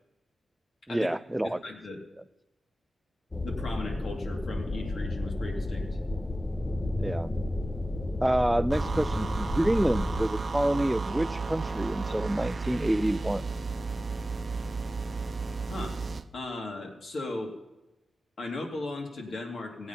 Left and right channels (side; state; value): both; normal; correlation 0.95